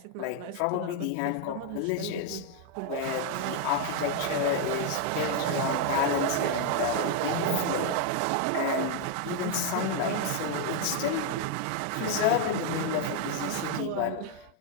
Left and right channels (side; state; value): both; different; correlation 0.00